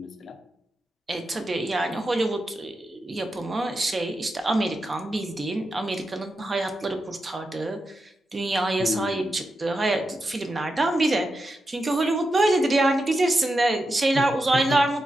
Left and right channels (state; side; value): normal; both; correlation 0.88